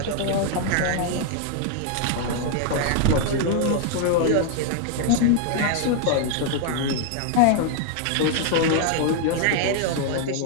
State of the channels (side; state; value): both; different; correlation 0.00